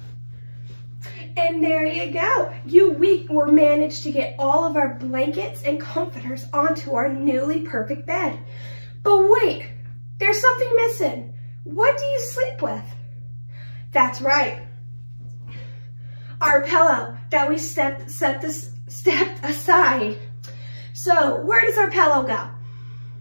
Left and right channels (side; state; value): both; inverted; correlation -1.00